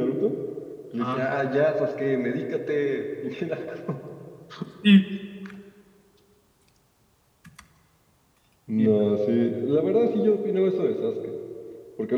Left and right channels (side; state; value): both; identical; correlation 1.00